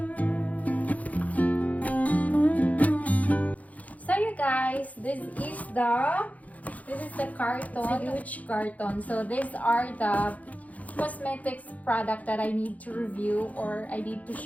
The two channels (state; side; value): late; right; 0.072 ms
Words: Guys, this is the carton. It's a huge carton. So these are the cosmetics product that I need to review, or I need to